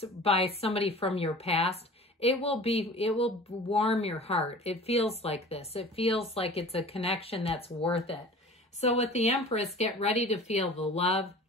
by somebody from your past, it will warm your heart. It feels like this. It feels like it's a connection that's worth it. So with the Empress, get ready to feel the love,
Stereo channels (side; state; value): both; normal; correlation 0.42